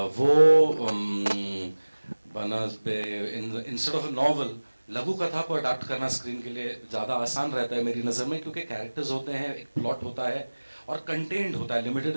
वो इंस्टेड ऑफ अ नॉवल लघु कथा को अडाप्ट करना स्क्रीन के लिए ज़्यादा आसान रहता है मेरी नज़र में, क्योंकि कैरेक्टर्स होते हैं, एक प्लॉट होता है और कंटेंट होता है, लिमिटेड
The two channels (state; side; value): inverted; both; correlation -1.00